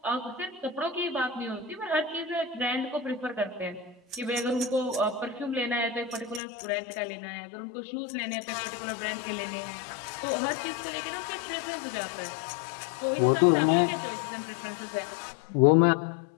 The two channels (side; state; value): right; drops out; at 6.4 s